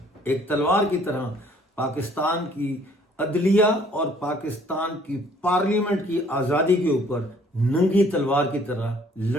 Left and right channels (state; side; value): normal; both; correlation 0.59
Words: ایک تلوار کی طرح پاکستان کی عدلیہ اور پاکستان کی پارلیمنٹ کی آزادی کے اوپر ننگی تلوار کی طرح